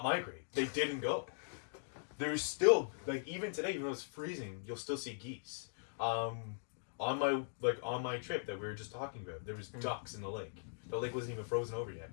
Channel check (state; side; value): silent; right; digital silence